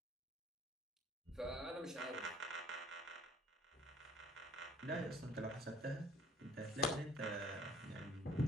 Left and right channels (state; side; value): normal; both; correlation 0.55